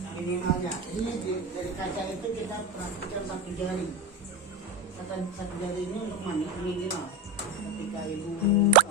Minimalnya. Ini dari kaca itu kita perhatikan 1 jari. Satu jari ini untuk minimal. Ketika ibu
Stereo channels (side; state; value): both; normal; correlation 0.19